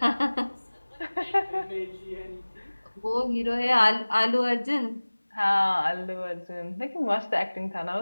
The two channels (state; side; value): inverted; both; correlation -1.00